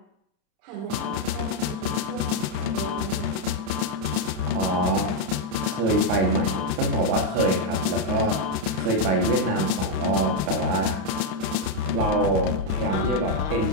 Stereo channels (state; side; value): late; left; 32 ms